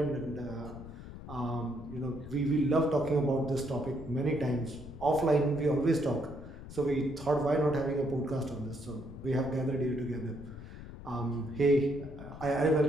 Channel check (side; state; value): left; noise; rumble, 13 dB below the sound